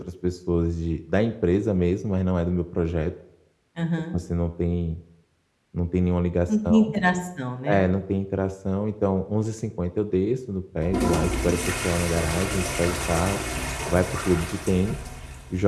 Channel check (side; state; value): both; identical; correlation 1.00